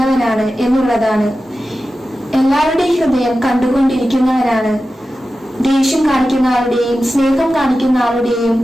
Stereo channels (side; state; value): both; normal; correlation 0.93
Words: എന്നുള്ളതാണ്. എല്ലാവരുടെയും ഹൃദയം കണ്ടുകൊണ്ടിരിക്കുന്നവനാണ്. ദേഷ്യം കാണിക്കുന്ന ആളുടെയും, സ്നേഹം കാണിക്കുന്ന ആളുടെയും,